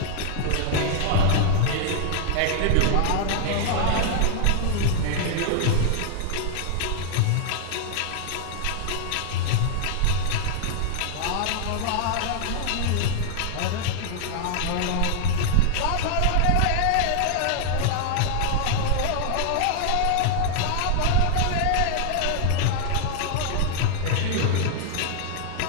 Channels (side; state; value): both; different; correlation -0.01